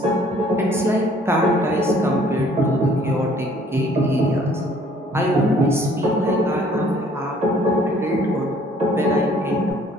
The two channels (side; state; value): both; normal; correlation 0.58